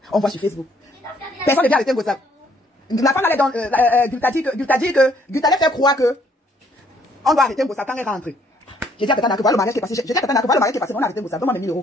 On voit sur Facebook. Personne ne vient arrêter Ngossap. La femme allait dans Gulta dit que Gulta allait faire croire que on doit arrêter Ngossap quand elle rentre. J'ai dit à Tatana que voilà le mariage qui est passé. J'ai dit à Tatana que voilà le mariage qui est passé. On a arrêté Ngossap. Donne-moi mes 1000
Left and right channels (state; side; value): normal; both; correlation 0.65